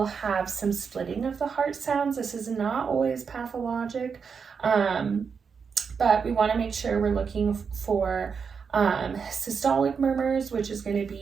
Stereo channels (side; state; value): left; quieter; 6.0 dB